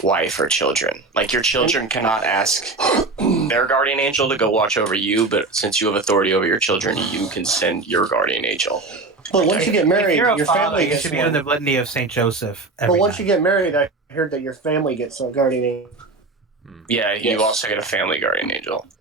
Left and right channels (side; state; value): left; quieter; 3.5 dB